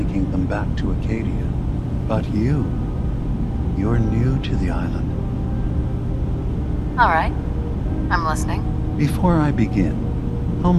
them back to Acadia. But you're new to the island. All right. I'm listening. Before I begin, how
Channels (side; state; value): both; identical; correlation 1.00